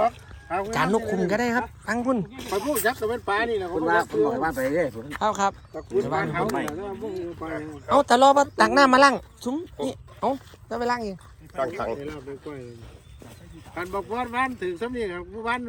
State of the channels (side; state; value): both; identical; correlation 1.00